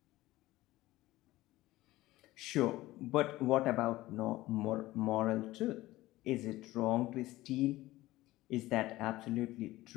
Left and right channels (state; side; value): quieter; right; 17.4 dB